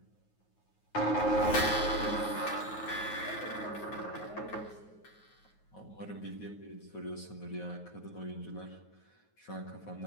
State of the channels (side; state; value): right; late; 9.4 ms